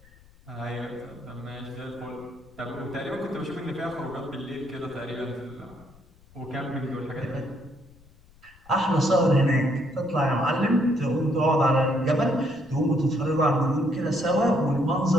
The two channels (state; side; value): noise; left; rumble, 27 dB below the sound